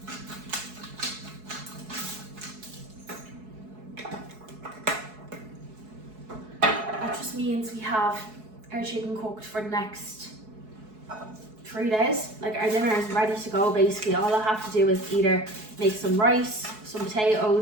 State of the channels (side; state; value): left; late; 4.7 ms